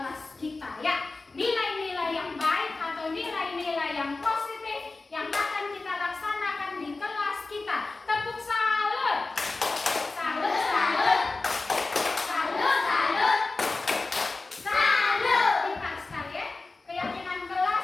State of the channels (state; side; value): quieter; right; 3.5 dB